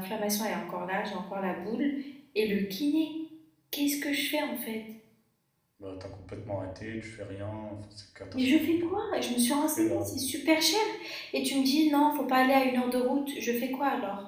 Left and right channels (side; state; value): both; identical; correlation 1.00